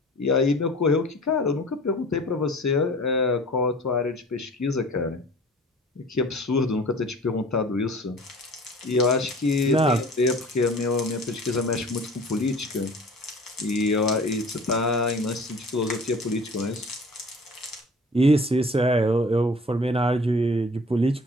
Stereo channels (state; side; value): normal; both; correlation 0.45